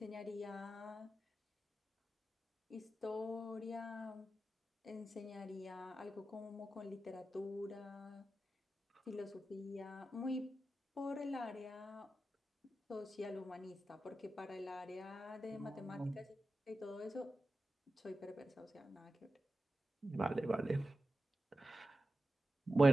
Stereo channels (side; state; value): both; normal; correlation 0.92